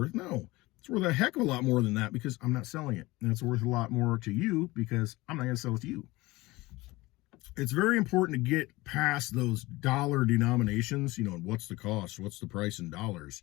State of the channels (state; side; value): quieter; right; 20.7 dB